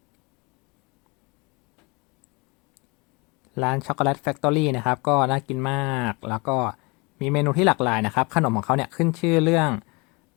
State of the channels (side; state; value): right; quieter; 28.0 dB